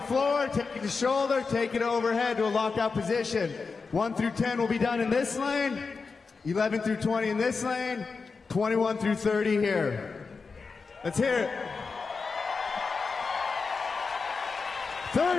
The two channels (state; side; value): quieter; right; 4.7 dB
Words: floor, take it to shoulder, take it overhead to a lockout position. 1 through 10 will be done in this lane, 11 through 20 in this lane, 21 through 30 here. Let's hear it.